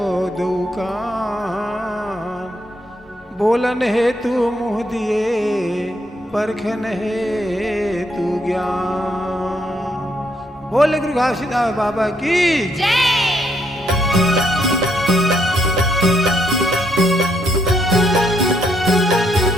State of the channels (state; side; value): normal; both; correlation 0.74